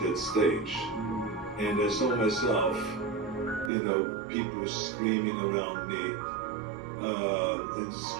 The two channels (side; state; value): left; drops out; at 3.7 s